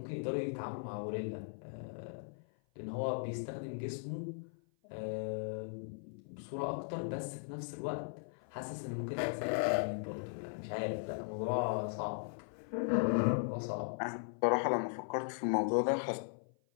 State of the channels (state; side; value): silent; right; 52 dB below the other